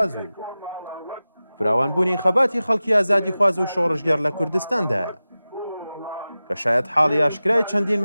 و فراوانبوونی خەباتی خەڵکی ئازادی خواز و شۆڕژگەر لە کوردستاندایە کە شاید حاڵی ئاشکرای چەندین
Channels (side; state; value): both; inverted; correlation -0.96